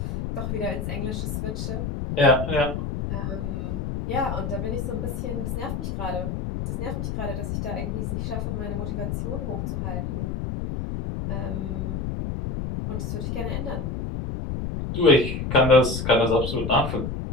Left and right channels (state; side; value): noise; left; rumble, 3 dB below the sound